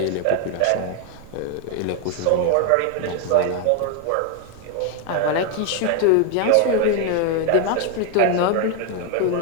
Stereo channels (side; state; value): both; different; correlation 0.01